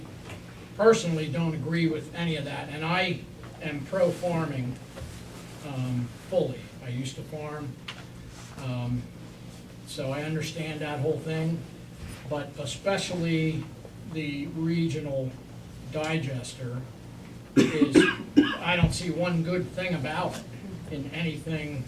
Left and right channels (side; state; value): both; identical; correlation 1.00